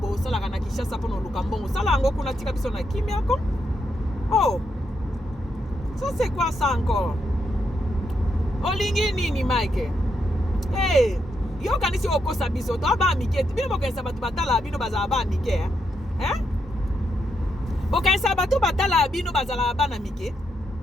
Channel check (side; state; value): both; normal; correlation 0.81